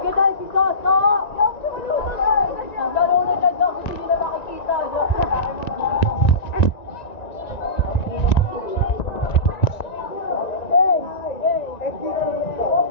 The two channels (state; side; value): late; right; 1.9 ms